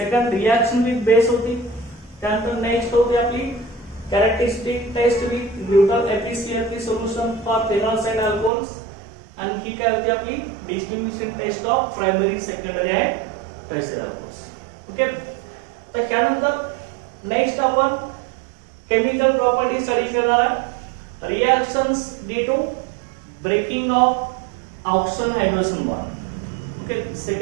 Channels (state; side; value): drops out; left; at 8.5 s